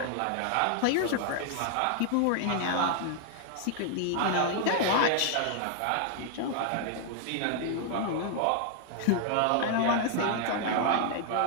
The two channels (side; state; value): both; different; correlation 0.00